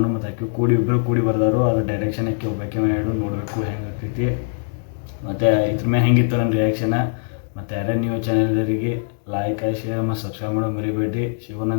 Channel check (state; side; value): silent; right; digital silence